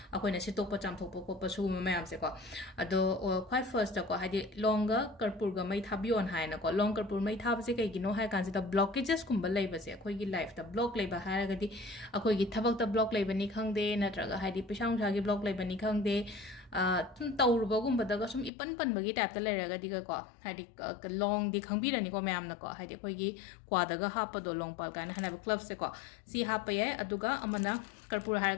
akoina sitokpa chamthokpa koppa sugumba mayam se ko ado quite first ko hari longa karpur ga mai thabion haina ko long karpur mai thab se kai gino hai kan se da blockages gumba leiba se akoi gi life da block leiba hara gadi akoi gi thabak da block leiba ni khangde natraga hari pisang sa gi block leiba ni khangde tawrubagum badaga sum ipan pan bagi tap ta leraga diga ko hadi long di khangbi rani ko mayam na ko hadi koi gi kwadaga hapa do long pal kan hana club se ko si hapa ye aduga amana karpur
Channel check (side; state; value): right; drops out; at 18.5 s